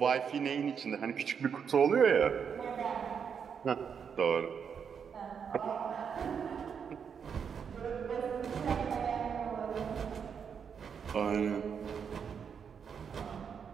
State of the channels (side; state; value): left; quieter; 7.0 dB